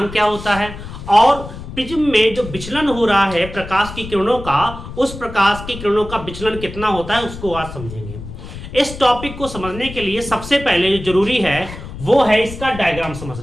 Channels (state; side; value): noise; left; rumble, 12 dB below the sound